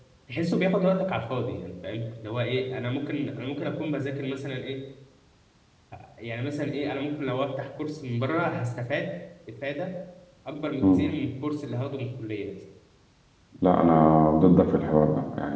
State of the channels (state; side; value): identical; both; correlation 1.00